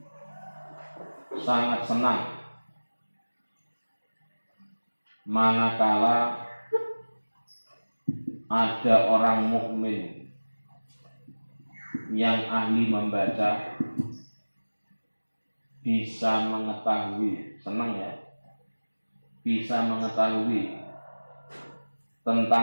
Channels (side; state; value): both; inverted; correlation -1.00